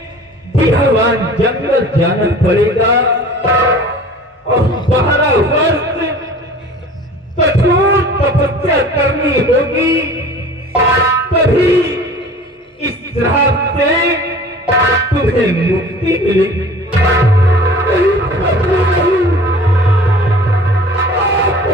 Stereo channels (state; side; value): normal; both; correlation 0.44